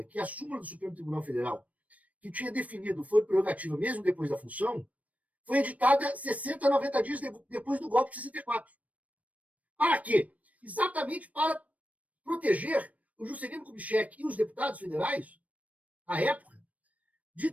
que a súmula do Supremo Tribunal Federal, que tinha definido o foro prerrogativa mesmo depois da função, foi editada 60 a 90 dias depois do golpe de 64. Para quê? Exatamente para proteger o Juscelino Kubitschek e os deputados federais, à época, de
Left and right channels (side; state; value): left; late; 0.069 ms